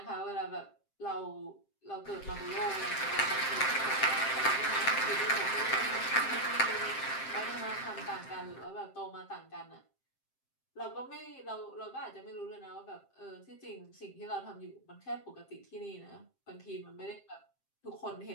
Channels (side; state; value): right; late; 7.6 ms